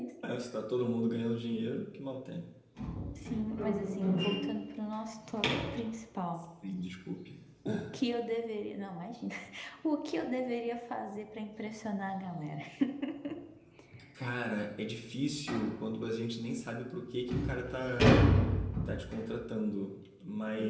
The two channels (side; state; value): both; identical; correlation 1.00